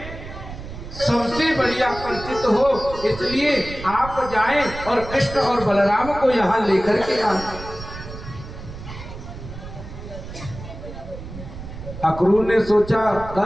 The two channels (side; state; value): right; noise; rumble, 12 dB below the sound